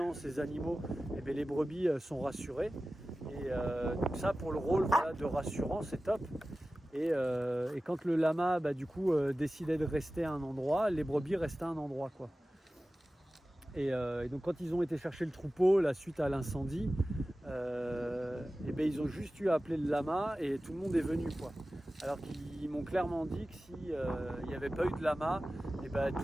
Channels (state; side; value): normal; both; correlation 0.96